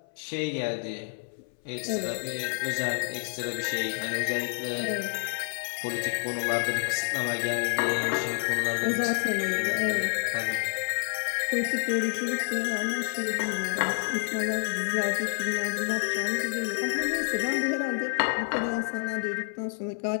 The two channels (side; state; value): right; silent; 59 dB below the other